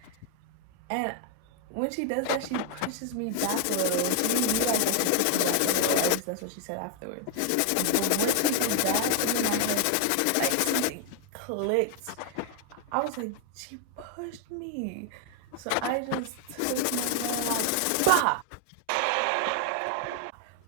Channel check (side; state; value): both; different; correlation 0.00